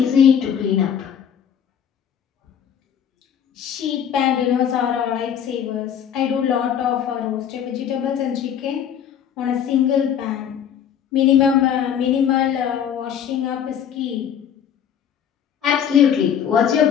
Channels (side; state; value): right; quieter; 8.7 dB